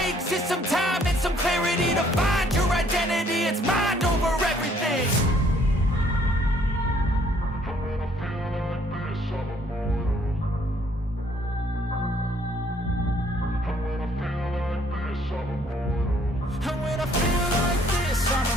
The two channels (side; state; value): both; normal; correlation 0.63